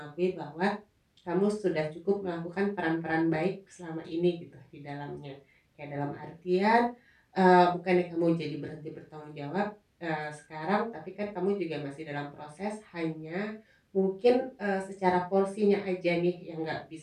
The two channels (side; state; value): both; identical; correlation 1.00